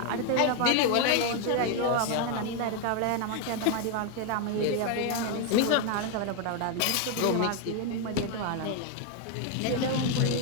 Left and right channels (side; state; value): both; different; correlation 0.01